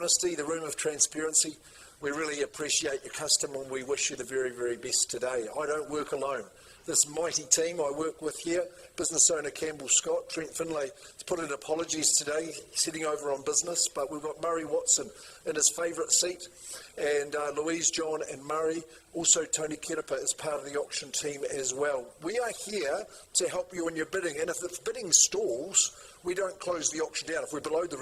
the room of transparency. We really appreciate your custom and we wish you the very, very best today. I don't work alone. This mighty team I work with here, business owner Campbell Scott, Trent Finlay has put in apologies today, sitting over on business, but we've got Murray Watson in his favourite seat, and Louise, John and Murray. Also Tony Kerepa is part of the auction team as well. We are here to help you in your bidding, and if the bidding stalls, we don't close the auction down. If we're below the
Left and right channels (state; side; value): identical; both; correlation 1.00